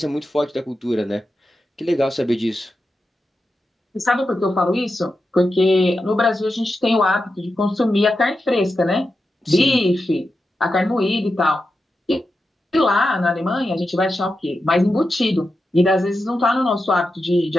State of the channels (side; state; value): both; normal; correlation 0.90